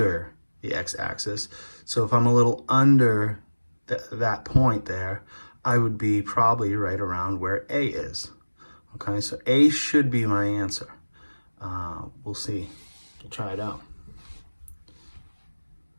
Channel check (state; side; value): inverted; both; correlation -1.00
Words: the x-axis. So if I'm a little under that point there, I would be probably right around where A is. Okay, so A should be my answer. We'll see. We'll try it out.